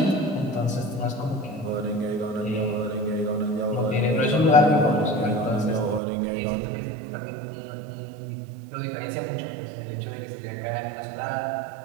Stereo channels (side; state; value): left; drops out; at 6.0 s